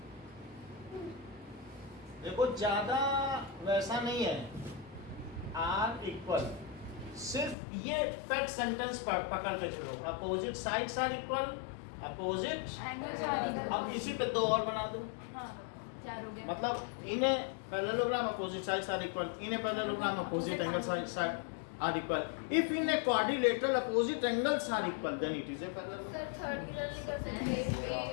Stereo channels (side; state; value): right; drops out; at 7.6 s